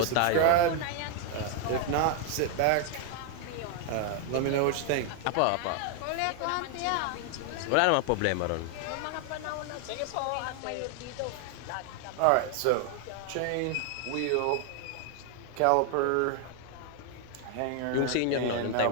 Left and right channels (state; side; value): different; both; correlation 0.00